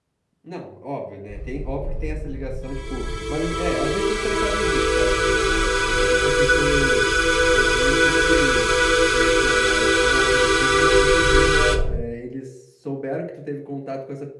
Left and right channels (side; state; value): both; identical; correlation 1.00